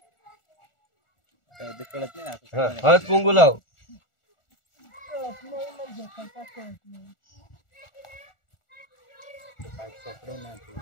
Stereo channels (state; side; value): late; right; 1.4 ms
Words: ते कळत नाही आता. हा, हळद कुंकू लाव.